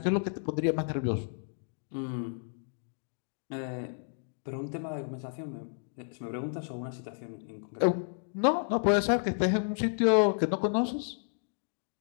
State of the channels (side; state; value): right; silent; digital silence